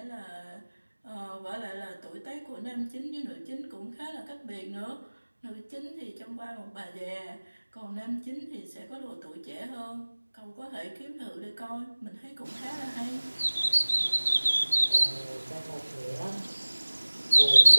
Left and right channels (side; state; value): both; inverted; correlation -1.00